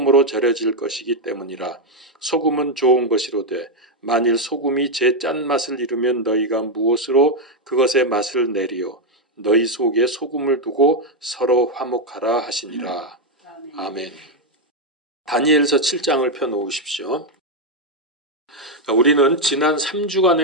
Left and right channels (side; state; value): both; normal; correlation 0.03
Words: 절여질 것이기 때문이라. 소금은 좋은 것이로되 만일 소금이 제 짠맛을 잃으면 너희가 무엇으로 그것의 맛을 내리요. 너희 속에 소금을 두고 서로 화목하라 하시니라. 아멘. 다니엘서 7장을 펴놓으십시오. 우리는 지난